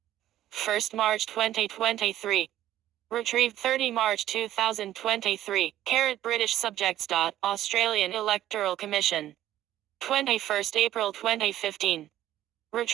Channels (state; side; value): quieter; left; 13.0 dB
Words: 1st March 2023. Retrieved 30 March 2023. British subjects. Australian Electoral Commission. 21st April 2015.